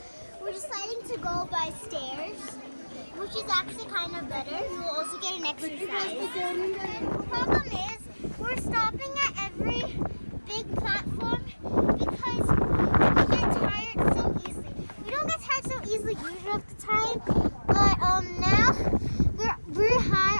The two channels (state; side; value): inverted; both; correlation -1.00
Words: We're deciding to go by stairs, which is actually kind of better. We will also get an exercise. The problem is we're stopping at every big platform because we get tired so easily. We don't get tired so easily usually at the time, but now we're high